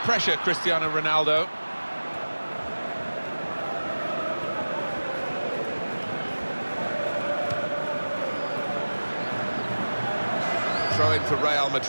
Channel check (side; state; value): both; inverted; correlation -1.00